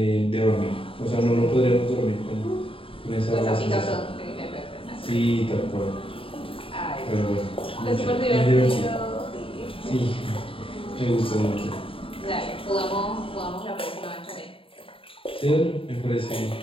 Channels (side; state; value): right; late; 0.26 ms